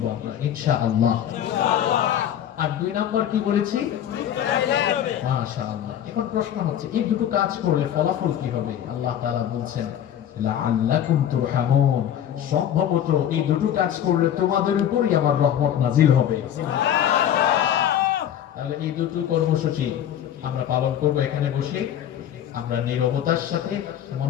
আমরা ইনশাআল্লাহ। আর দুই নাম্বার কি বলেছি? মাশাআল্লাহ। এখন প্রশ্ন হচ্ছে এই দুটো কাজ করলে ফলাফল কি হবে? আল্লাহ তাআলা বলছেন লাআল্লাকুম তুরহামুন, সম্ভবত এই দুটো কাজ করলে তোমাদের উপরই আমার রহমত নাজিল হবে। তাহলে এই দুটো কর্মসূচি আমরা পালন করব এখানে বসে। আমরা নীরবতার সাথে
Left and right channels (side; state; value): right; quieter; 10.3 dB